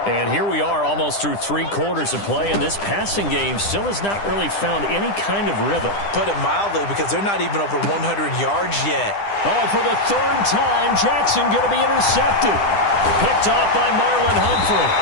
And here we are almost through 3 quarters of play, and this passing game still has not really found any kind of rhythm. Put it mildly, because they're not even over 100 yards yet. Oh, and for the 3rd time, Jackson going to be intercepted. Picked off by Marlon Humphrey.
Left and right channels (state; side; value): late; right; 9.9 ms